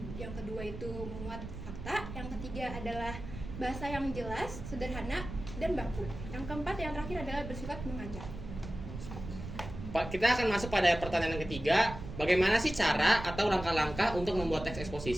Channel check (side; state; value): right; noise; rumble, 10 dB below the sound